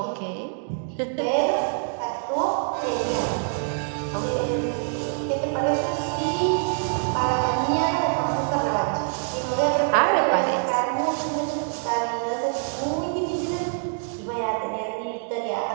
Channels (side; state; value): left; silent; 62 dB below the other